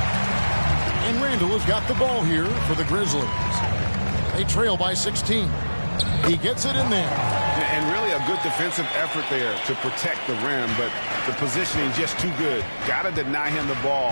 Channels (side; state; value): both; inverted; correlation -1.00